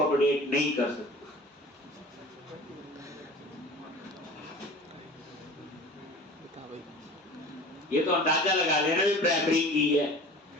नहीं कर सकते? ये तो अंदाजा लगा लेना भी प्राइमरी की है।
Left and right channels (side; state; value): both; normal; correlation 0.41